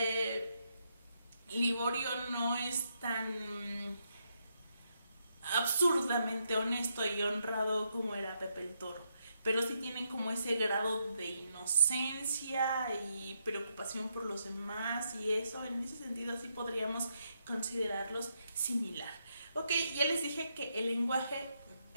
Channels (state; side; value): inverted; both; correlation -0.79